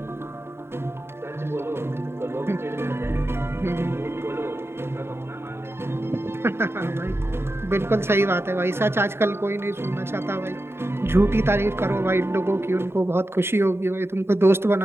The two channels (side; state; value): left; late; 0.12 ms